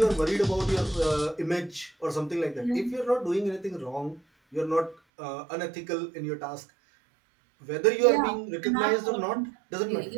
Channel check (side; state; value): left; drops out; at 5.0 s